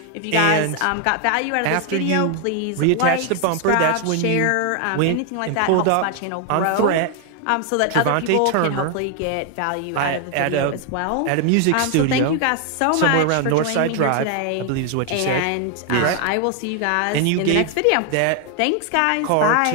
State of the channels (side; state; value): both; different; correlation 0.01